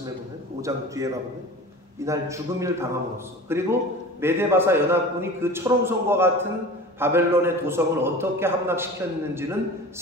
보면 5장 뒤에 가보면 이날 죽음을 당함으로써 그리고 메데바사 연합군이 그 철옹성과 같은 바벨론의 도성을 어떻게 함락시켰는지는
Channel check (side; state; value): both; normal; correlation 0.37